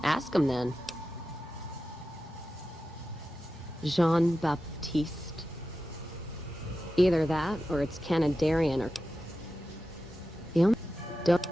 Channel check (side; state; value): both; normal; correlation 0.92